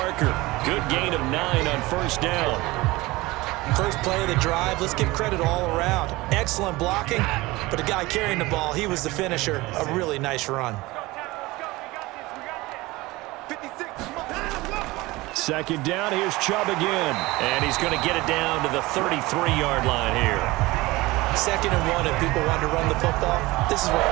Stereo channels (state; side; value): quieter; left; 20.7 dB